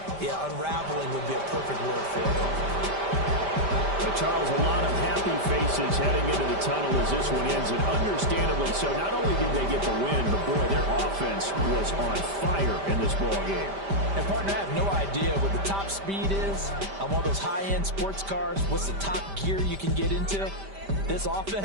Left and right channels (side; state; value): left; late; 5.1 ms